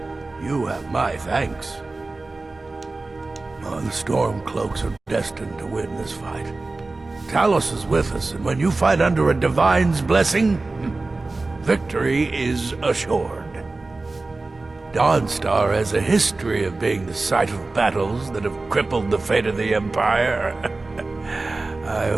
You have my thanks. Oh, the Stormcloaks are destined to win this fight. Talos is with us, and when you fight under a divine's blessing, victory is assured. Dawnstar has a history of being the site of battles that have crippled the fate of the Empire. I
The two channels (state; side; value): quieter; left; 3.4 dB